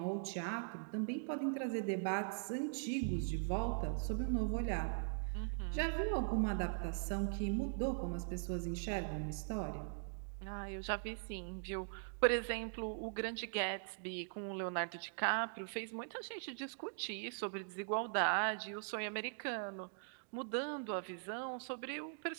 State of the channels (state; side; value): silent; left; digital silence